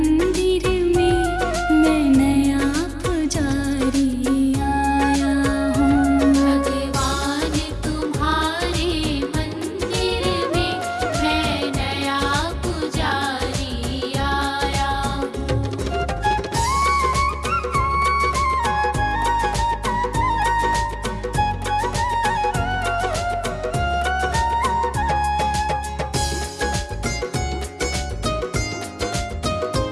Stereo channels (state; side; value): identical; both; correlation 1.00